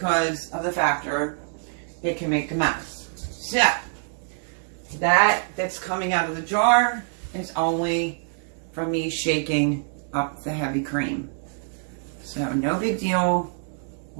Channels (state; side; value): silent; left; 61 dB below the other